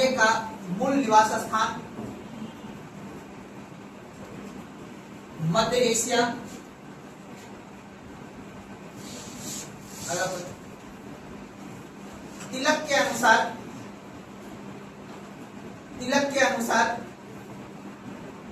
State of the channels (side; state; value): both; identical; correlation 1.00